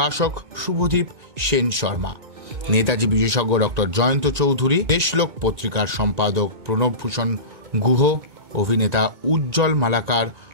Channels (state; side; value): late; left; 2.2 ms